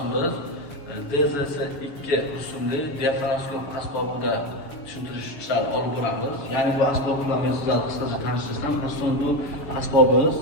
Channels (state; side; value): late; right; 6.9 ms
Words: biz DZS-2 rusumli diafragmoskop asbobida tushuntirish ishlarini olib boramiz. Ya'ni bu asbob bilan men sizlarga qisqacha tanishtirsam, asosan bu asbobimiz